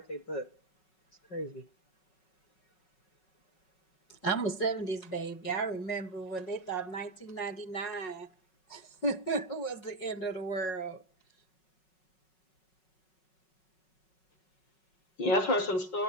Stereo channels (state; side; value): late; right; 5.4 ms